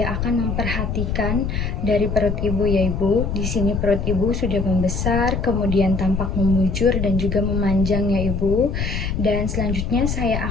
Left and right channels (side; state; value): left; noise; rumble, 2 dB below the sound